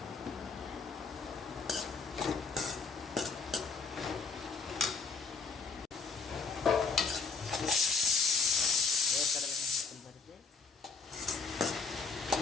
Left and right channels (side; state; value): right; quieter; 4.6 dB